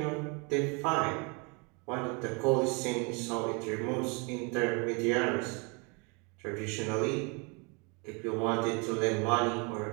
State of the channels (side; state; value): left; quieter; 31.6 dB